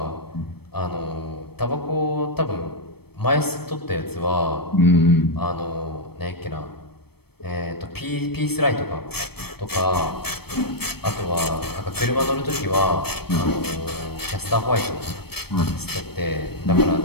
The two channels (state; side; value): late; right; 0.97 ms